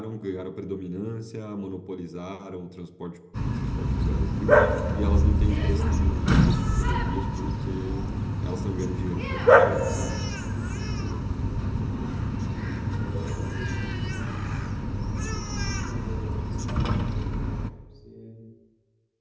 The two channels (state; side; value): identical; both; correlation 1.00